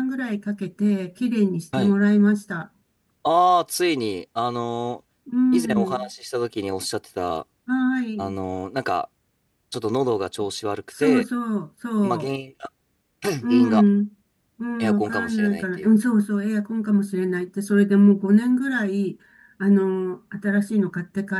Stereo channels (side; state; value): both; identical; correlation 1.00